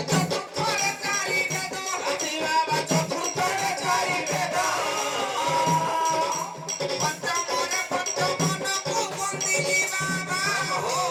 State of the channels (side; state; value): both; identical; correlation 1.00